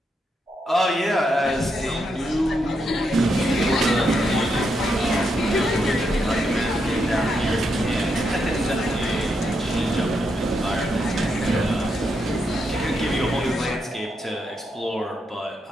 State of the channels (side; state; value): both; normal; correlation 0.81